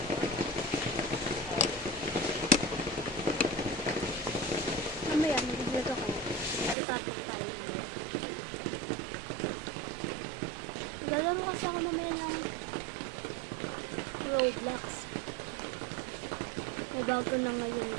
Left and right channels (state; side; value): drops out; left; at 6.8 s